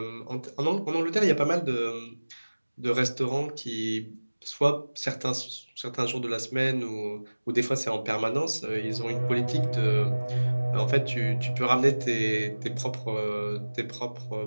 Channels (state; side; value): inverted; both; correlation -1.00